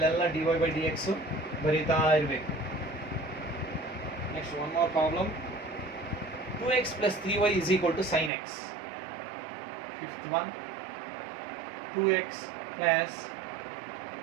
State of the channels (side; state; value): left; drops out; at 8.3 s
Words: dy by dx ಬರೀತಾ ಇರಬೇಕು. Next, one more problem. 2x plus 3y is equal to sin x. Fifth one. 2x plus